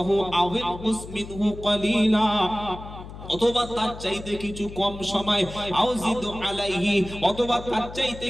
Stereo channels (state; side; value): noise; left; hum, 13 dB below the sound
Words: আও ইনকুস মিনহু কালিলা, অথবা তার চাইতে কিছু কম সময়, আউজিদু আলাইহি, অথবা তার চাইতে